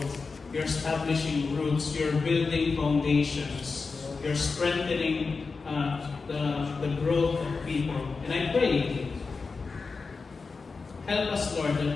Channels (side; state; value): right; quieter; 4.5 dB